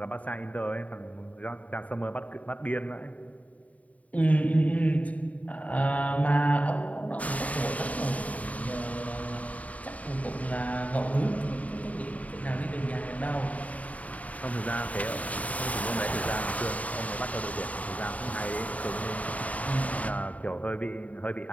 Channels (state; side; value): late; right; 0.070 ms